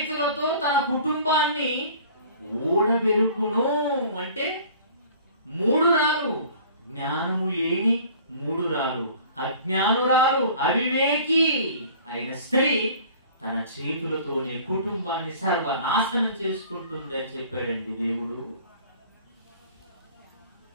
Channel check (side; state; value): both; inverted; correlation -0.48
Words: తన కుటుంబాన్ని ఊడబెరుకును. అంటే 3 రాలు. జ్ఞానము లేని 3 రాలు, అజ్ఞానురాలు, అవివేకి అయిన స్త్రీ తన చేతులతోనే కుటుంబాన్ని సర్వనాశనం చేసుకుంటుంది అని చెప్పాడండి దేవుడు.